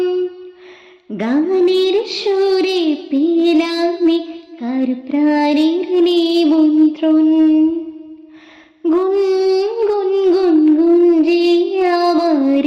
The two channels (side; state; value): both; identical; correlation 1.00